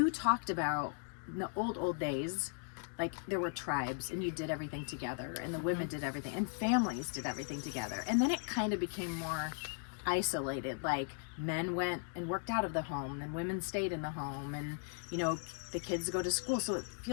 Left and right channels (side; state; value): right; silent; 53 dB below the other